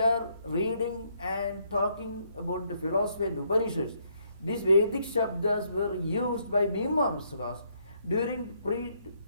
reading and talking about the philosophy and Upanishads, these Vedic Shabdas were used by Mimamsakas during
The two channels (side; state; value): both; inverted; correlation -0.72